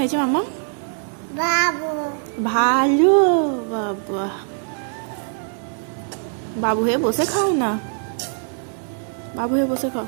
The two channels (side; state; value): left; silent; 60 dB below the other